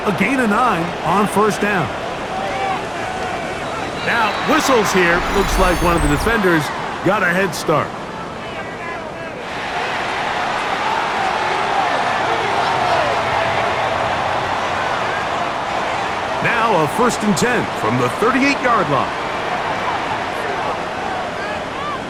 a gain of 9 on first down. Now, whistles here. Looks like one of the defenders got a head start. Now a 1st and 10 from the 38-yard line.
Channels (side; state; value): both; identical; correlation 1.00